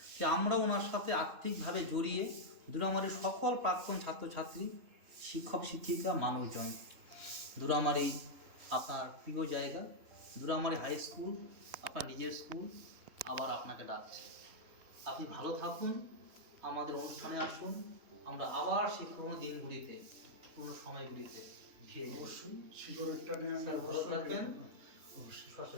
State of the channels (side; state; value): left; late; 3.4 ms